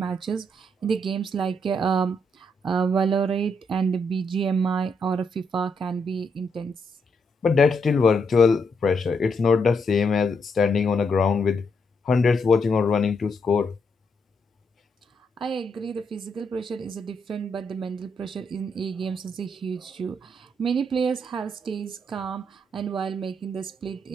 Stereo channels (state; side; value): normal; both; correlation 0.78